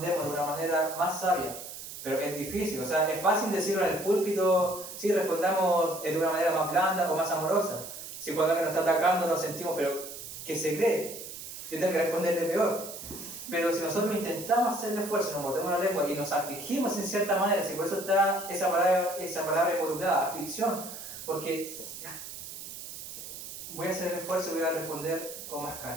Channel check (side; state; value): right; noise; hiss, 11 dB below the sound